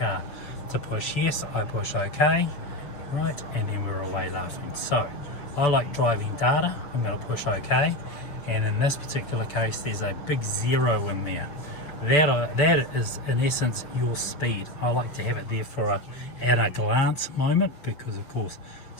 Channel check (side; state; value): right; late; 6.9 ms